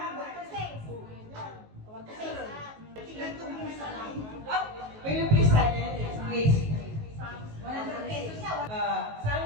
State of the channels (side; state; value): left; late; 19 ms